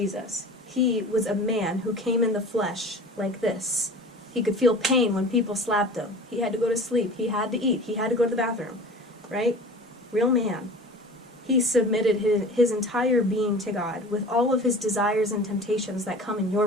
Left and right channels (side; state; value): both; normal; correlation 0.39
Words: He was a man who came in the flesh like this. He could feel pain when people slapped him. He had to go to sleep. He had to eat. He had to go to the bathroom. Right? Real man. He submitted his entire being to God with all of his desires and temptations that come in your